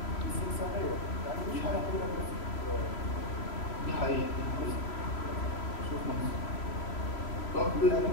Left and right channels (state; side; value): late; right; 3.0 ms